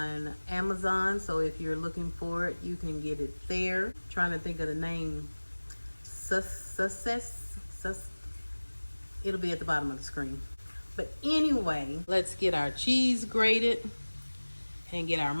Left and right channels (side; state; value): both; inverted; correlation -1.00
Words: Amazon, so if you're looking for it, you can get it there. Trying to think of the name. It'll be at the bottom of the screen. But anyway, let's get our cheese grated and get our